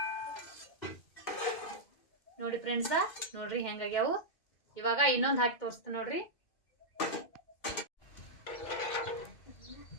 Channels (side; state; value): right; late; 2.1 ms